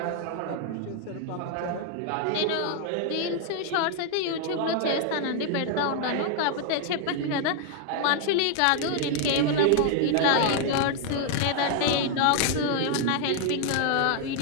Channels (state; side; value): different; both; correlation 0.00